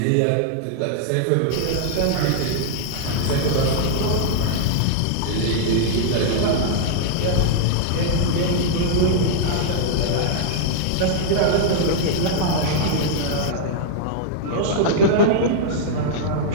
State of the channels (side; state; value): both; different; correlation -0.01